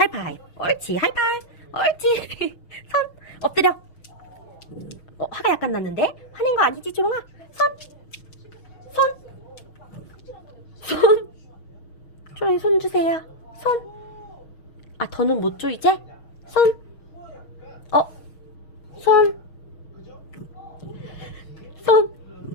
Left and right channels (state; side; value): late; right; 6.3 ms